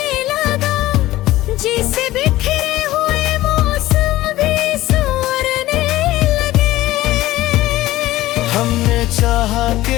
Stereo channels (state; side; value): quieter; right; 16.3 dB